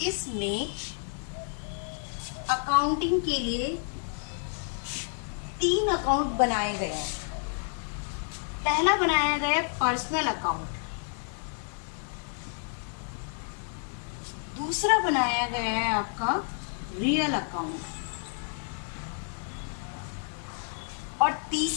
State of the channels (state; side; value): silent; right; 58 dB below the other